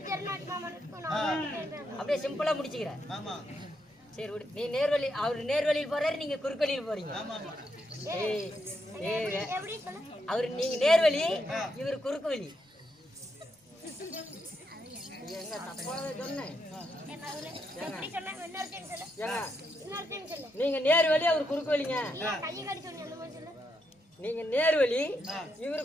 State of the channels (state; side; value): normal; both; correlation 0.80